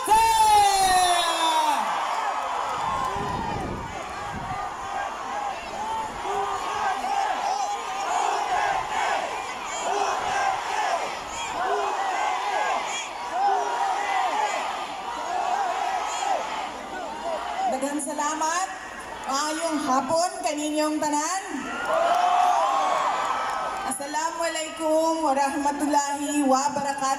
Daghang salamat. Maayong hapon kaninyong tanan. Assalamualaikum warahmatullahi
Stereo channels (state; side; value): identical; both; correlation 1.00